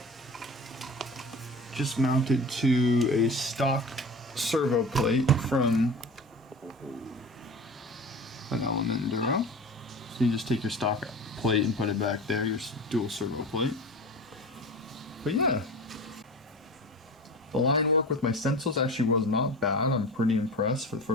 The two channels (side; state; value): both; normal; correlation 0.34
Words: just mounted to a stock servo plate from an Element Enduro. So you just take your stock plate and put it back there, your dual servo plate. But yeah, the line work with my stencils actually was not bad. I'm pretty impressed for the